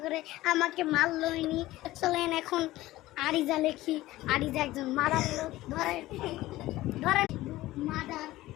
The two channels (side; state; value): right; quieter; 17.0 dB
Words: করে আমাকে মারলইনি। চলেন এখন আরিজা লেখি। আরিজা একজন মাদার লোক, ধরেন মাদার